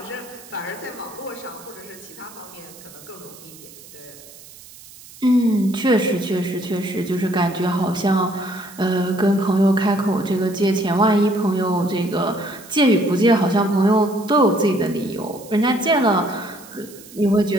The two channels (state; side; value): noise; right; hiss, 20 dB below the sound